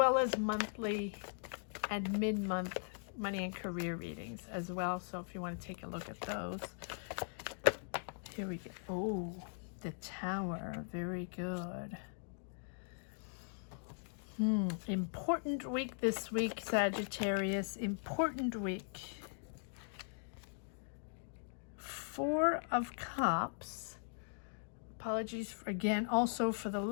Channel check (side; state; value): right; silent; digital silence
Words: as monthly and mid-month money and career readings as well. So if you want to take a look at those. Here we go. Oh, the Tower. Very good. Important week this week, Sagittarius. Important week. Four of Cups. Apologies for, again, also for the